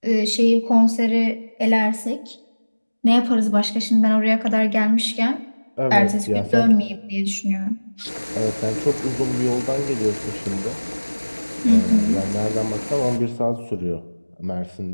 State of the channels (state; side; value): inverted; both; correlation -1.00